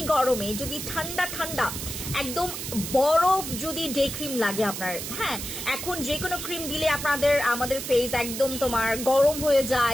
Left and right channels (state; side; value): noise; right; hiss, 6 dB below the sound